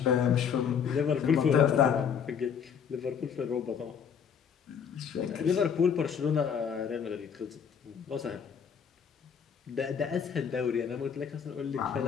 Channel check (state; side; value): quieter; right; 7.3 dB